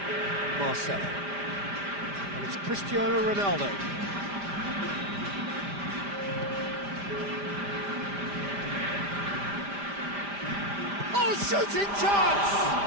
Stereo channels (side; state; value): left; late; 5.0 ms